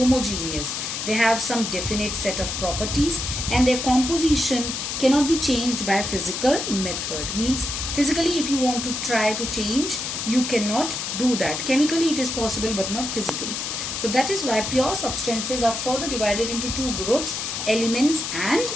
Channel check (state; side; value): noise; left; hiss, 4 dB below the sound